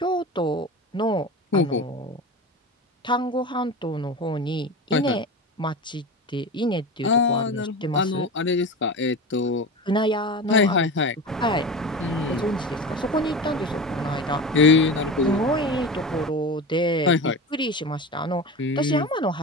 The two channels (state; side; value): normal; both; correlation 0.28